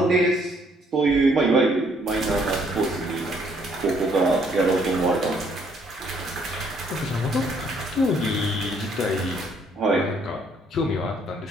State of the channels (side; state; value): both; normal; correlation 0.66